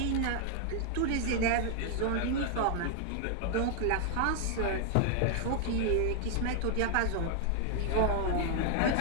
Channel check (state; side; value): different; both; correlation 0.00